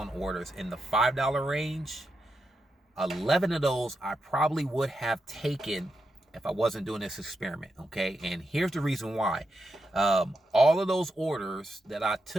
orders in the $5 range, 11 of those I probably would have taken if I wasn't doing this experiment, okay? And here's the reason why. All of those orders that I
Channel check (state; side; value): normal; both; correlation 0.86